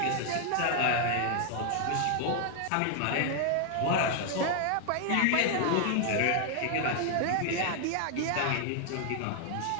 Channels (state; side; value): different; both; correlation 0.00